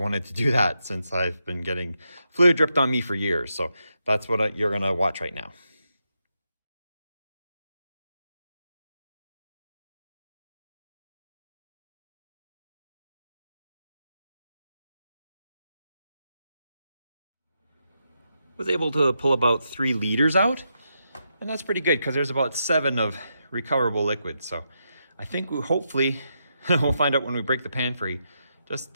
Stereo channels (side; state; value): both; inverted; correlation -0.84